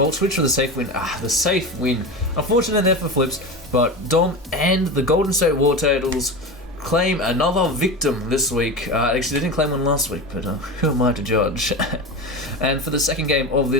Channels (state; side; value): normal; both; correlation 0.25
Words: Switch or the safe win? The safe win. Unfortunately there for Flips, but Dom and the Golden State War Turtles claim another victim this week. Actually, they didn't claim one last week, but who am I to judge? And for the second game of